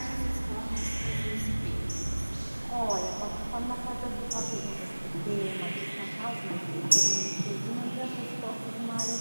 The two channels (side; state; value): both; inverted; correlation -1.00